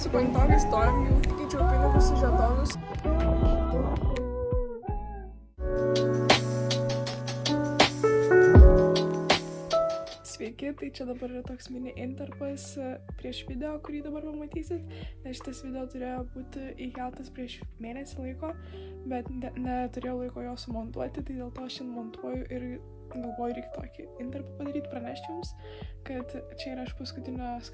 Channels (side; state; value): both; identical; correlation 1.00